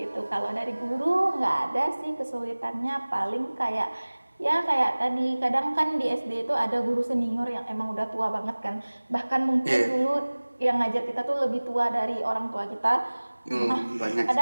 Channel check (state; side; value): inverted; both; correlation -1.00